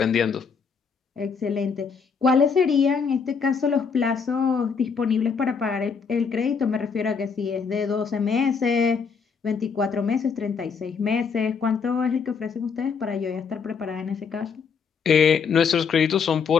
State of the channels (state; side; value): quieter; right; 5.9 dB